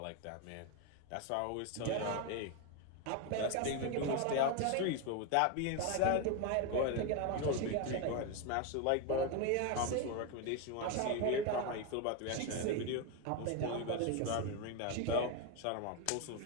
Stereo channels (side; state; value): both; different; correlation 0.02